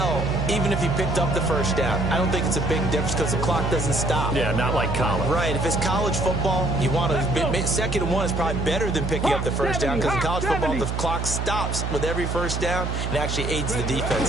even if he picked up the first down, I don't think it's a big difference because the clock doesn't stop. Yeah, not like college. Right. If it's college football, you want to 2nd and 1 is probably better than picking up the first down because in college football, the clock stops with every first down and actually aids the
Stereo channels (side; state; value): right; noise; hum, 2 dB below the sound